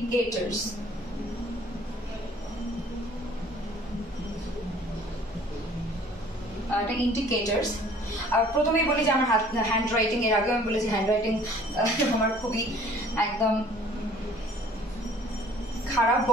ইন্ডিকেটরস। প্রথমেই বলি যে আমার হ্যান্ড রাইটিং, এর আগে আমি বলেছি হ্যান্ড রাইটিং আমার খুবই একদম খারাপ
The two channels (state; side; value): normal; both; correlation 0.53